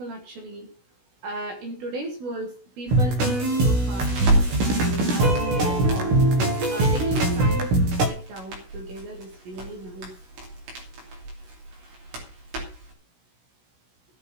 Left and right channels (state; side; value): late; left; 16 ms